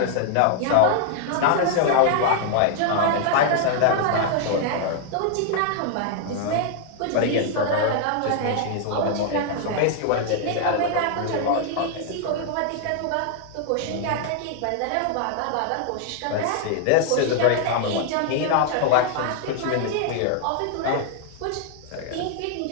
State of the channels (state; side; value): different; both; correlation -0.01